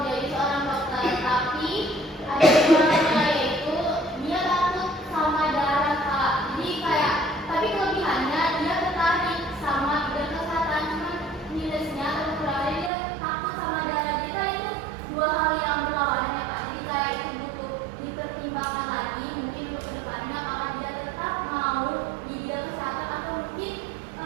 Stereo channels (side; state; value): left; drops out; at 12.9 s